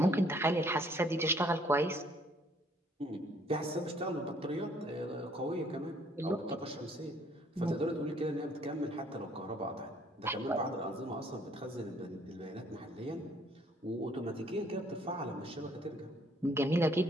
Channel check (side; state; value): both; normal; correlation 0.62